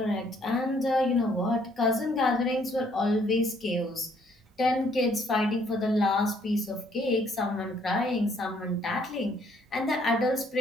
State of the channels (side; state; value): both; normal; correlation 0.65